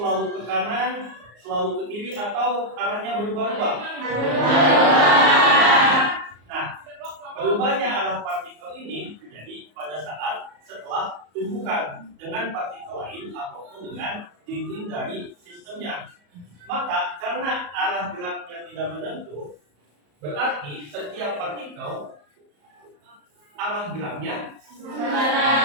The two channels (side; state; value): left; late; 34 ms